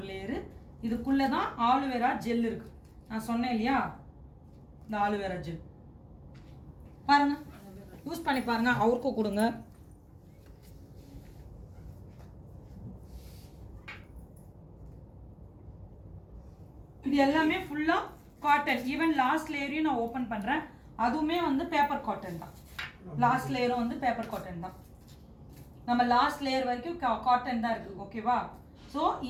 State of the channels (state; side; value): identical; both; correlation 1.00